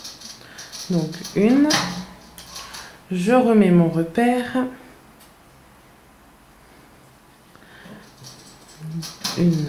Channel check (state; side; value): identical; both; correlation 1.00